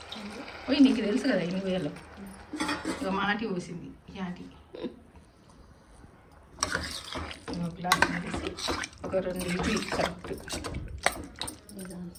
పోయి నీకు తెలుసు కదా ఎన్ని వేయాలో. ఇక మాటి పోసింది యాటి గ్లాస్ వేసి ఒక 2 ఇడ్లీ కరెక్ట్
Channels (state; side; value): identical; both; correlation 1.00